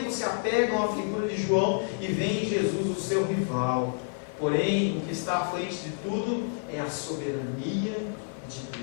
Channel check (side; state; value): right; silent; 59 dB below the other